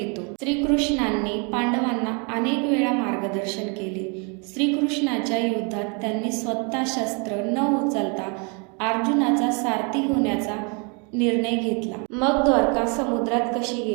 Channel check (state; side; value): quieter; left; 34.7 dB